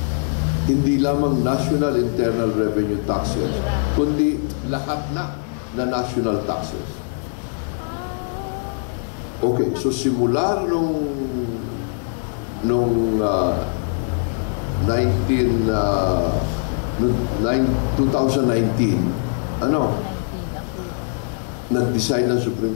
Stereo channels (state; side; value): silent; right; digital silence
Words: hindi lamang national internal revenue taxes, kundi lahat na national taxes. Okay, so simula nung 2019, nag-decide ng Supreme